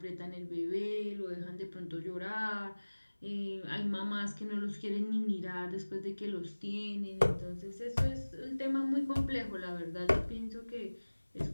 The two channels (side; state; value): both; inverted; correlation -1.00